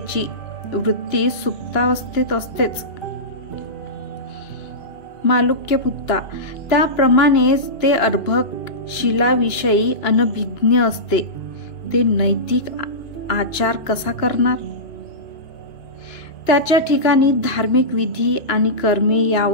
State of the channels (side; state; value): right; late; 2.9 ms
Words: वृत्ती सुप्तावस्थेत असतेच. मालुक्य पुत्ता, त्याप्रमाणेच ते अर्भक शिलाविषयी अनभिज्ञ असते. ते नैतिक आचार कसा करणार? त्याच्या ठिकाणी धार्मिक विधी आणि कर्मे